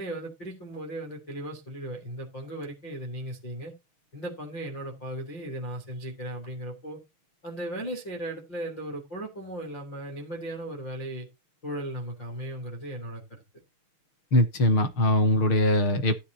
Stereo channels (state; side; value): late; right; 6.5 ms